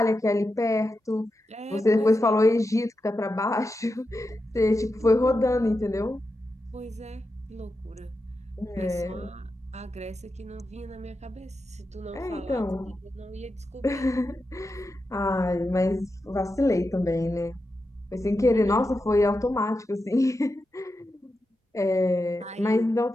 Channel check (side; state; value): both; normal; correlation 0.89